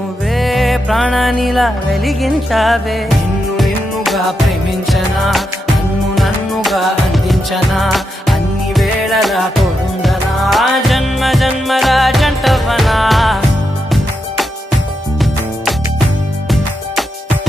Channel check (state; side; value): normal; both; correlation 0.85